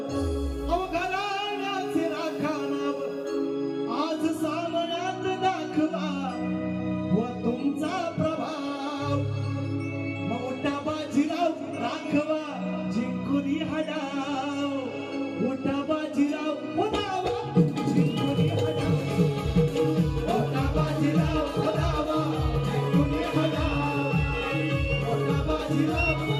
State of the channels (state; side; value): identical; both; correlation 1.00